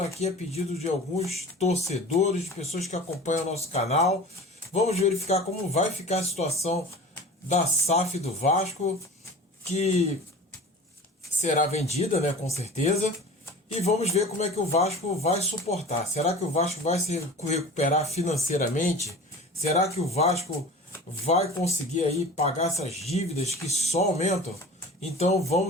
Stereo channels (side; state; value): both; normal; correlation 0.38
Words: aqui a pedido de alguns torcedores, de pessoas que acompanham o nosso canal. Vamos verificar como vai ficar a situação da SAF do Vasco, que será vendida, né, com certeza. E vamos ver como é que o Vasco vai suportar. Será que o Vasco vai se recuperar financeiramente? Será que o Vasco vai conseguir aí pagar essas dívidas que só aumentam? Então